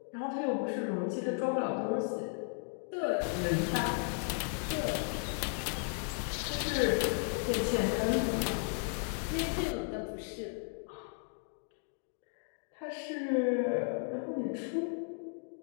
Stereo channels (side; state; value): right; silent; 54 dB below the other